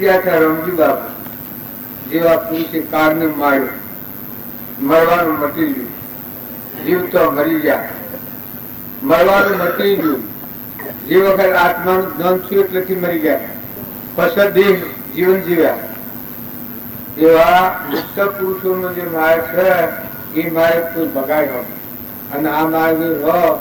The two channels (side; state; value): both; identical; correlation 1.00